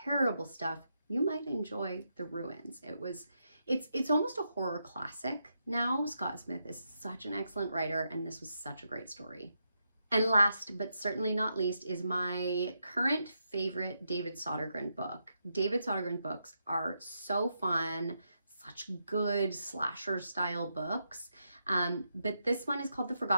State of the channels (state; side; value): inverted; both; correlation -0.83